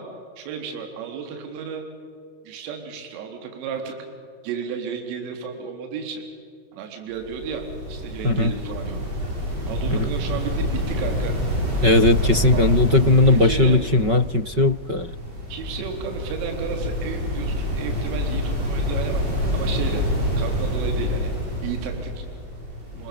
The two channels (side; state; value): left; late; 5.3 ms